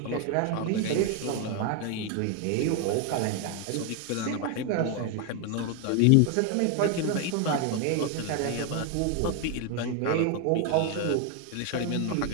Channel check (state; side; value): different; both; correlation 0.01